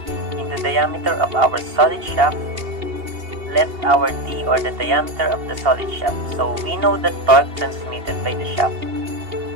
in the diameter of our solid shaft, let our D, or the diameter of the solid shaft. So we know the torque transmitted by the shaft,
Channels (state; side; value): late; left; 2.8 ms